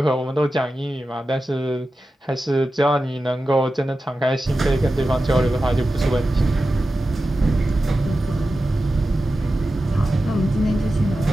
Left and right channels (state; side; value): normal; both; correlation 0.93